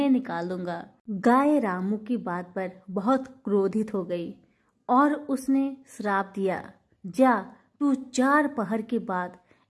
निकाल दूंगा। गाय रामू की बात पर बहुत क्रोधित हो गई और उसने श्राप दिया, जा तू 4 पहर के बाद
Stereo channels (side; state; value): both; identical; correlation 1.00